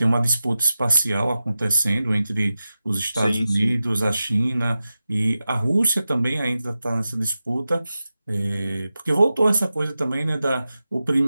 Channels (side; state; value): both; inverted; correlation -0.93